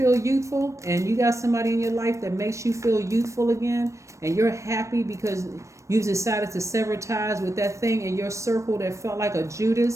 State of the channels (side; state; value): left; late; 0.15 ms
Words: youthful and you got somebody in your life that makes you feel youthful again, and you're happy because you've decided to sever ties with that thing in your circle that felt like a